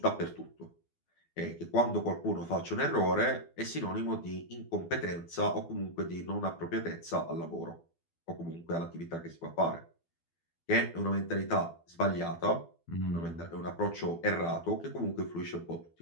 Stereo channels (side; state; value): right; late; 12 ms